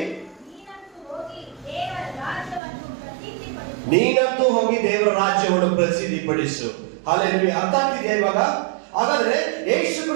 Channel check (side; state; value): left; drops out; at 2.6 s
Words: ನೀನಂತೂ ಹೋಗಿ ದೇವರ ರಾಜ್ಯವನ್ನು ಪ್ರಸಿದ್ಧಿಪಡಿಸು. ಹಲ್ಲೆಲೂಯಾ. ಅರ್ಥ ಆಗ್ತಿದೆಯಾ ಇವಾಗ? ಹಾಗಾದ್ರೆ ಯೇಸು